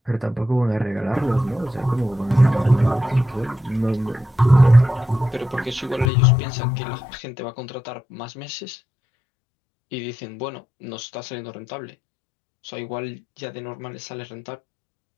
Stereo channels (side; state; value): right; drops out; at 6.1 s